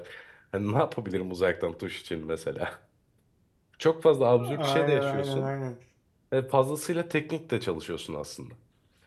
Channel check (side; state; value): both; identical; correlation 1.00